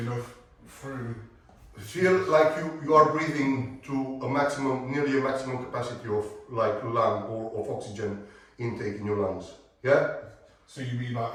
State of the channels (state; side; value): identical; both; correlation 1.00